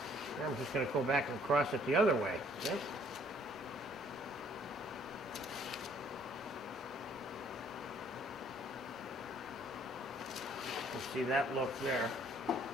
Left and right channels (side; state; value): both; normal; correlation 0.61